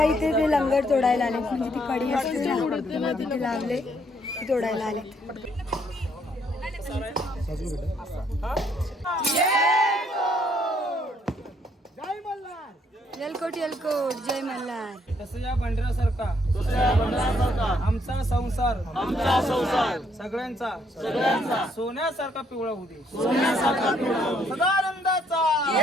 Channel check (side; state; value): both; normal; correlation 0.69